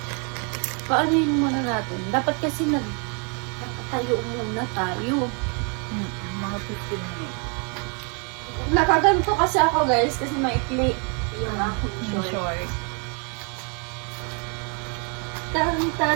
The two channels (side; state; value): left; quieter; 37.3 dB